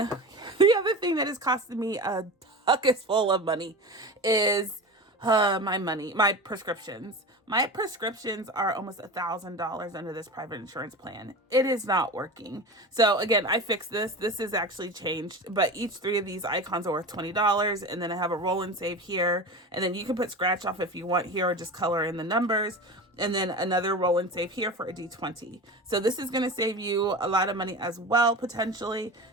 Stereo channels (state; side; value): normal; both; correlation 0.29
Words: other thing that has costed me a bucket full of money is my prescriptions. My prescriptions are almost $1,000 under this private insurance plan. It is not working. So again, I fixed this. This is actually changed, but each 3 of these icons are worth $20. And then I have a roll and save here. And then you can put scratch off if you want here, or just color in the numbers. And then another roll and save here for a D20. So this is going to save you a lot of money as well, potentially.